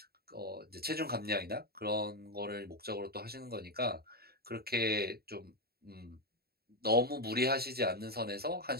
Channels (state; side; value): late; left; 0.45 ms